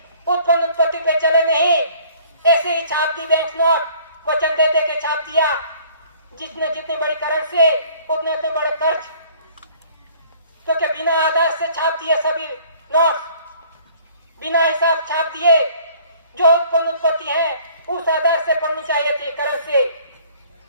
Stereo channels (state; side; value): inverted; both; correlation -0.55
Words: उत्पन्न उत्पत्ति पे चले नहीं। ऐसे ही छाप दी बैंक नोट, वचन दे दे के छाप दिया। जितने जितनी बड़ी करेंसी उतने उतने बड़े कर्ज, क्योंकि बिना आधार से छाप दिए सभी नोट, बिना हिसाब छाप दिए। जो उत्पन्न उत्पत्ति है उस आधार से पढ़नी चाहिए थी, कर्ज से।